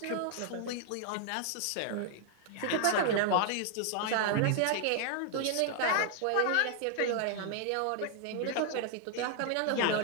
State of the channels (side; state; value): both; different; correlation 0.00